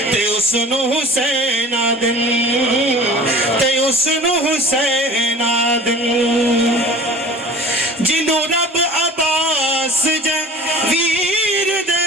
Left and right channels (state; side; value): normal; both; correlation 0.42